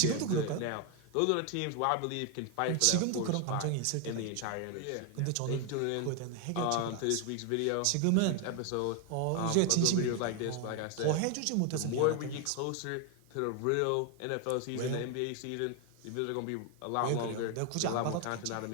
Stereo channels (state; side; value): different; both; correlation 0.01